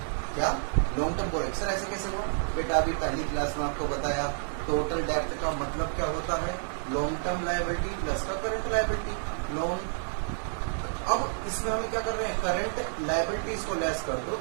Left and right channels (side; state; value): left; silent; digital silence